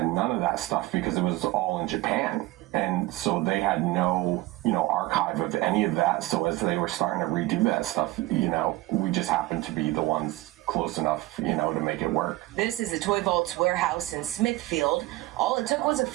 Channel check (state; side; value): quieter; left; 18.6 dB